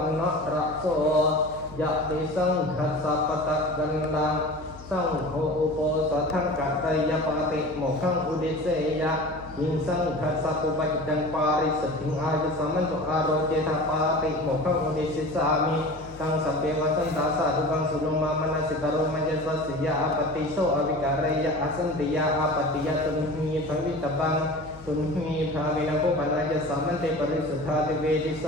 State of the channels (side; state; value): left; noise; hum, 18 dB below the sound